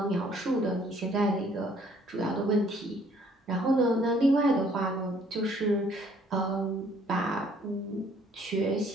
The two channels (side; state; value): both; normal; correlation 0.61